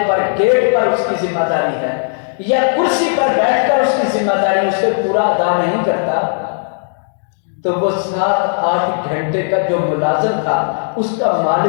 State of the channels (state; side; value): silent; right; digital silence